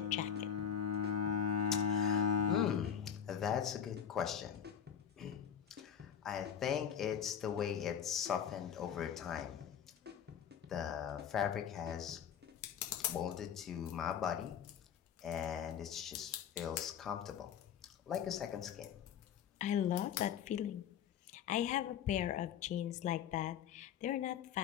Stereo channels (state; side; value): quieter; right; 8.5 dB